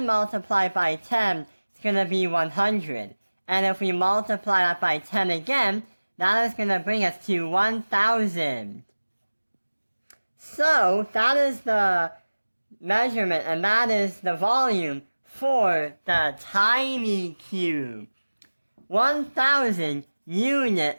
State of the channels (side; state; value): both; inverted; correlation -1.00